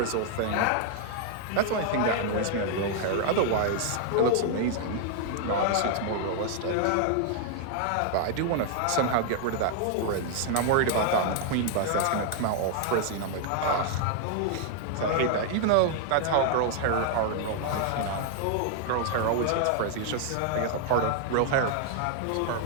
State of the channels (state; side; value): different; both; correlation 0.00